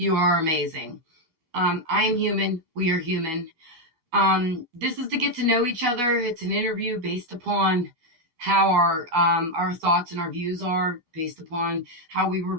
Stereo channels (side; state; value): left; late; 12 ms